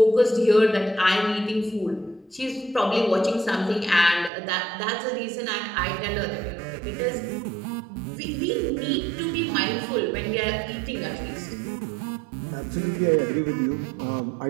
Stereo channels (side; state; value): left; drops out; at 4.3 s